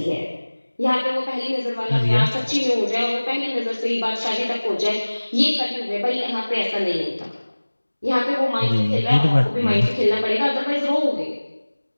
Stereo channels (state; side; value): inverted; both; correlation -1.00